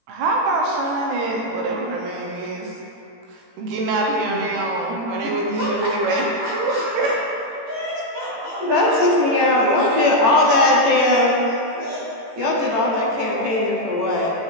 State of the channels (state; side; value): late; left; 18 ms